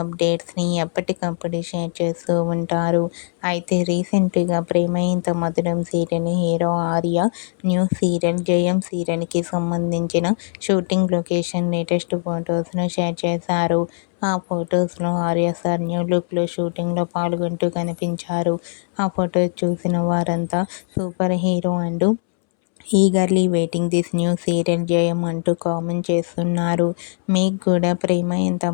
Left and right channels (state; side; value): silent; right; 65 dB below the other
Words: అప్డేట్స్ని ఎప్పటికప్పుడు షేర్ చేస్తూ ఉంటారు. అయితే రీసెంట్గా ప్రేమ Entha Madhuram serial hero Arya new serial జయం సీరియల్కి సంబంధించిన షూటింగ్ లొకేషన్ లేటెస్ట్ ఫొటోస్ను షేర్ చేశారు. ఆ ఫొటోస్లో ఆర్య సార్ న్యూ లుక్లో షూటింగ్లో పాల్గొంటూ కనిపించారు. ఆ ఫొటోస్ చూసిన వారంతా సూపర్ హీరో అంటూ eagerly waiting this new serial జయం అంటూ కామెంట్ చేస్తున్నారు. మీకు కూడా ప్రేమ ఎంత